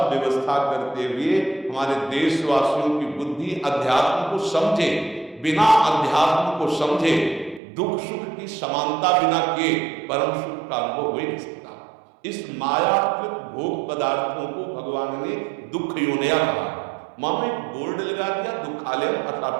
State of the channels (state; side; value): drops out; left; at 7.6 s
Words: व्यवस्था करते हुए हमारे देशवासियों की बुद्धि अध्यात्म को समझे। बिना अध्यात्म को समझे दुख सुख की समानता बिना के परम सुख का अनुभव हो ही नहीं सकता। इस मायाकृत भोग पदार्थों को भगवान ने दुख योनिया कहा। मां में बोर्ड लगा दिया, दुखालयम